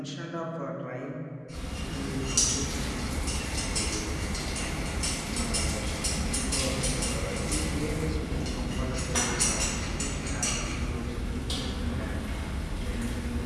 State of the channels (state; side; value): identical; both; correlation 1.00